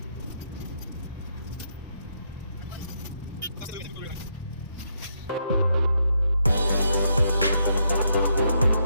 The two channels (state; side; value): inverted; both; correlation -0.78